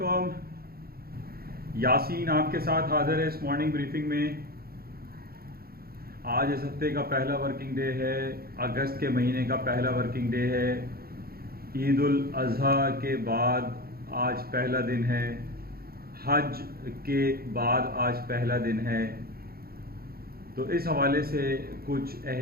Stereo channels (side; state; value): left; late; 0.44 ms